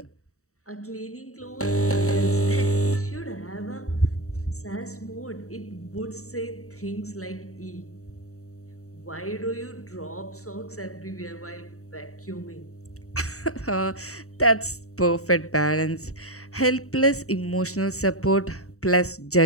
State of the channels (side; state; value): right; late; 0.64 ms